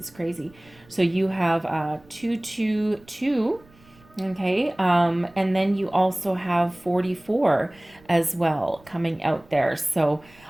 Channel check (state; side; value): noise; right; rumble, 27 dB below the sound